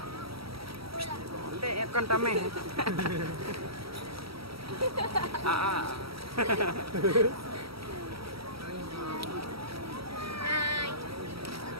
Ndek kan tame.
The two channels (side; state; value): left; late; 0.76 ms